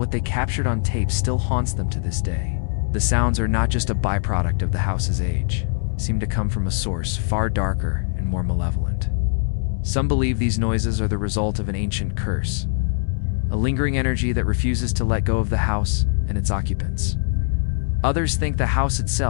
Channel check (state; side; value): silent; right; digital silence